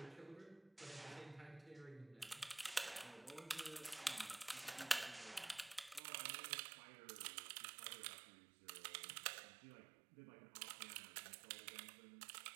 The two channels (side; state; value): left; drops out; at 6.0 s